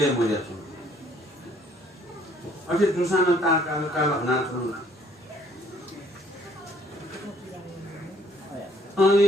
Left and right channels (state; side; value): normal; both; correlation 0.62